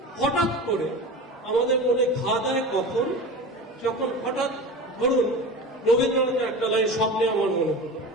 হঠাৎ করে আমাদের মনে ঘা দেয় কখন? যখন হঠাৎ ধরুন রবীন্দ্রনাথের একটা লাইন স্বপ্নে আমার মনে হলো।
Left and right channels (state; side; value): normal; both; correlation 0.31